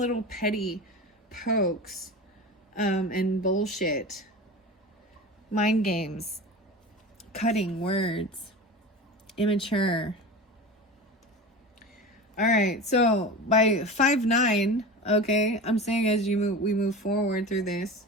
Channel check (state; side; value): normal; both; correlation 0.31